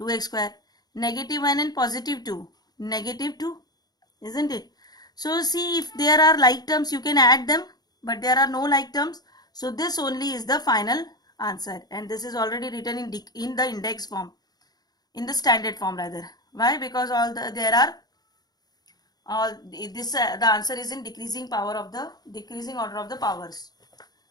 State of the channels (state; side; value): late; right; 0.19 ms